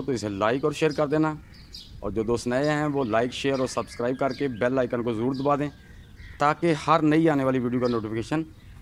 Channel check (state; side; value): identical; both; correlation 1.00